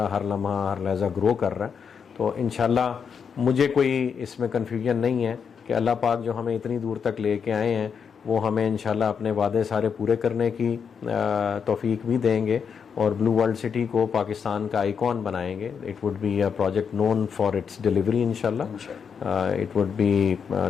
हर लम्हा हर लहज़ा ग्रो कर रहा है। तो इंशाल्लाह मुझे कोई इसमें कन्फ्यूजन नहीं है कि अल्लाह पाक जो हमें इतनी दूर तक लेके आए हैं वो हमें इंशाल्लाह अपने वादे सारे पूरे करने की तौफीक भी देंगे, और ब्लू वर्ल्ड सिटी को पाकिस्तान का आइकॉन बनाएंगे। It would be a project known for its delivery इंशाल्लाह, it would be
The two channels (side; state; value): right; quieter; 6.7 dB